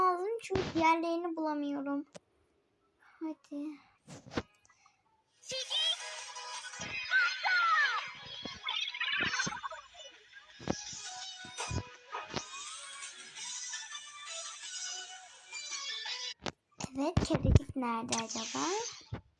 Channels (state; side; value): identical; both; correlation 1.00